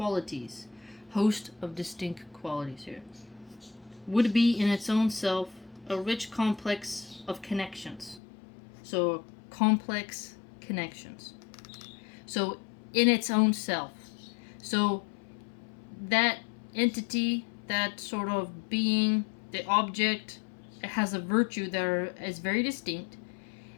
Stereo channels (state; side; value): drops out; right; at 8.2 s